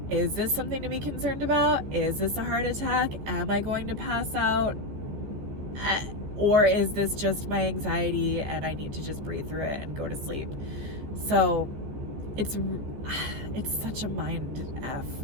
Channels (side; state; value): left; late; 14 ms